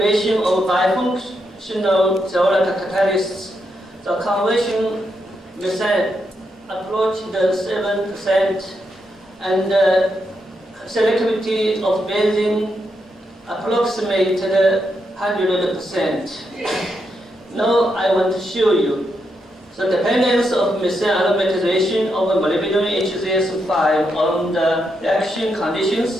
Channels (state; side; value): normal; both; correlation 0.82